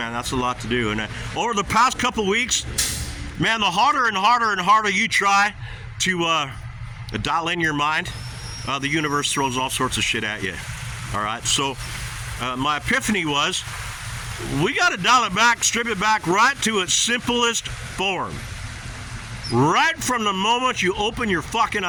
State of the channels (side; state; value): both; identical; correlation 1.00